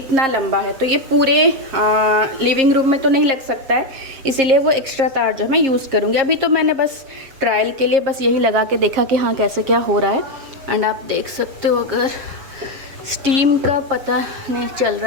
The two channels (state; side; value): late; left; 7.5 ms